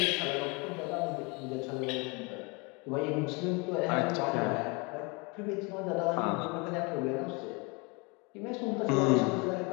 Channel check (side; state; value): right; quieter; 29.3 dB